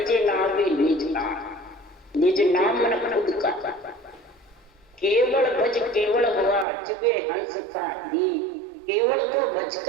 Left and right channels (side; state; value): left; drops out; at 6.7 s